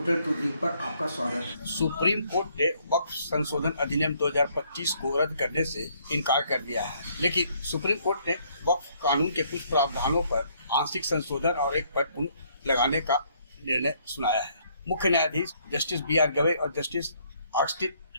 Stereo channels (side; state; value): both; inverted; correlation -0.67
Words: to dream पर आपका स्वागत है। सुप्रीम कोर्ट ने वक्फ संशोधन अधिनियम 2025 को रद्द करने से इनकार कर दिया है, लेकिन सुप्रीम कोर्ट ने वक्फ कानून के कुछ प्रावधानों पर आंशिक संशोधन और एक पर पुनः लगाने का निर्णय सुनाया है। मुख्य न्यायाधीश जस्टिस B.R. गवई और जस्टिस ऑगस्टिन